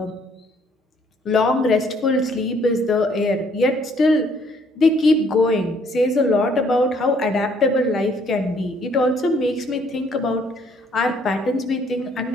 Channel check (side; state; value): both; normal; correlation 0.64